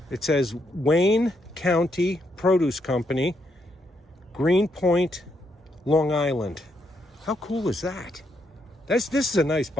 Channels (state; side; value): normal; both; correlation 0.77